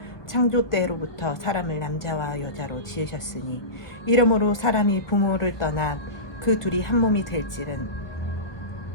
창조 때로부터 사람을 남자와 여자로 지으셨으니 이러므로 사람이 부모를 떠나 그 둘이 한 몸이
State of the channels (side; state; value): right; late; 1.2 ms